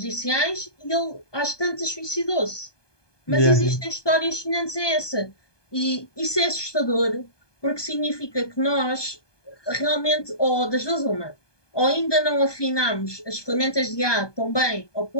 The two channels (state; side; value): late; right; 1.2 ms